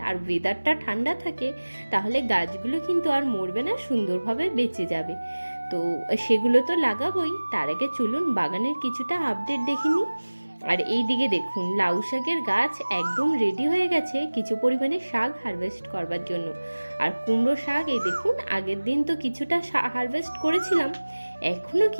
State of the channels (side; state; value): both; inverted; correlation -1.00